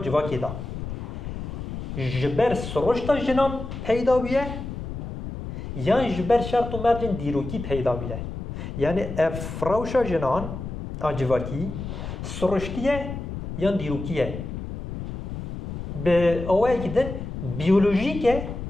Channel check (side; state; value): left; noise; rumble, 7 dB below the sound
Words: دا جبر سروشتا جنان پیدا بیه یا جبر شرط و مرجن دیروکی پیدا بیه یعنی افراوشا جنان آجواکی سرشتیه یا دیروکیه به اوه که دن بیولوژیکه